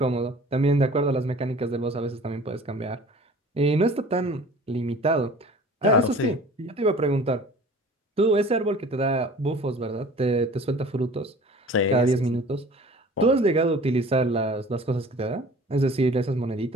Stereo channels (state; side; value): normal; both; correlation 0.46